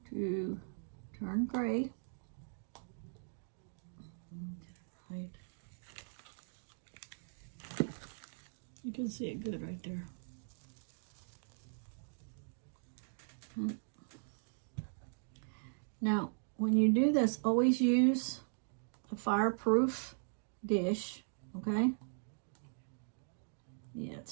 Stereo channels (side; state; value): left; silent; digital silence